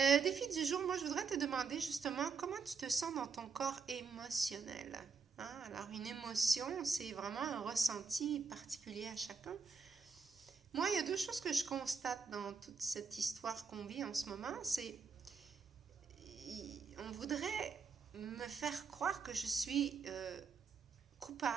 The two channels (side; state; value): left; quieter; 5.3 dB